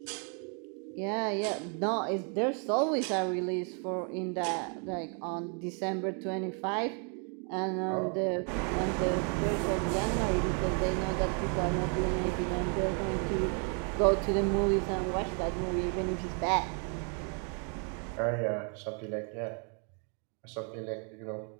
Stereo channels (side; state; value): left; quieter; 39.8 dB